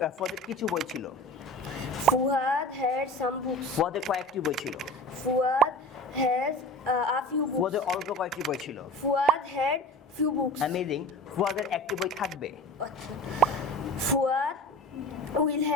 কিছু বই ছিল। Fuad had some books. ফুয়াদের কয়েকটি বই ছিল। Fuad has a few books. ফুয়াদের অল্প কয়েকটি বই ছিল। Fuad had few books. Amazing. ফুয়াদের একটি বই থাকবে। Fuad will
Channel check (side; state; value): both; normal; correlation 0.36